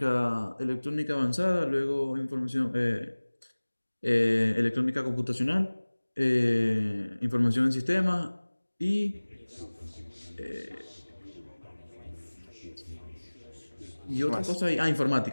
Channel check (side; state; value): both; inverted; correlation -1.00